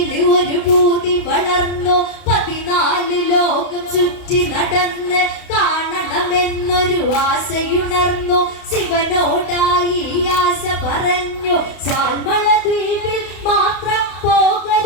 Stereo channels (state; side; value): late; right; 32 ms